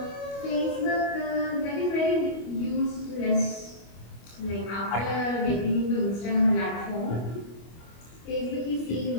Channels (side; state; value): right; late; 25 ms